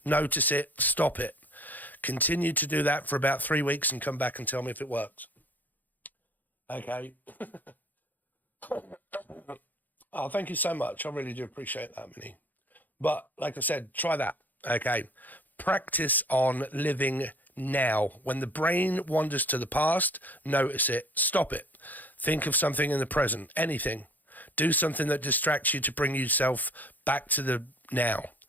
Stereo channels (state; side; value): late; right; 0.084 ms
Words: notice it, stop it. Continue to do that for about 3 weeks and come back and tell me if it works. Okay. Oh, thank you so much. I really do appreciate that, Minnie. But like I said, try that. Okay. Practice on living now. When the brain wanders to the past, notice it, stop it. Think of something in the present, anything. Do something that distracts you to bring yourself back to the now.